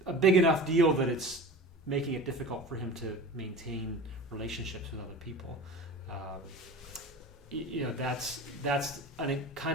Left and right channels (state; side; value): normal; both; correlation 0.35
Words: a big enough deal that it's making it difficult for him to maintain relationships with other people. That's a